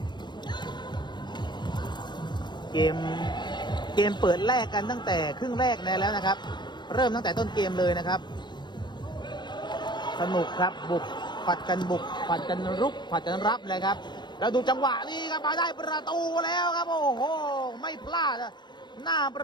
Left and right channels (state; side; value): late; right; 0.21 ms